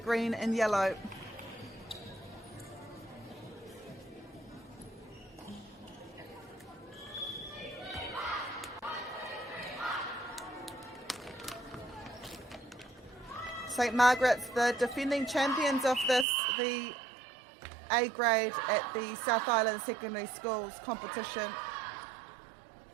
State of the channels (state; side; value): drops out; left; at 16.2 s